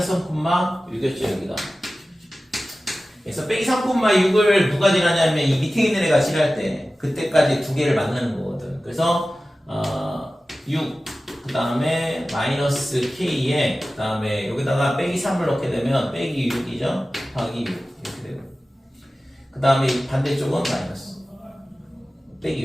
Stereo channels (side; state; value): both; normal; correlation 0.96